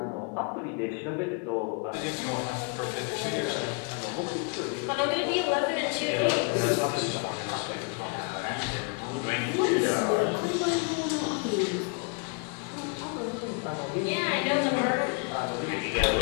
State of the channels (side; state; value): right; quieter; 35.4 dB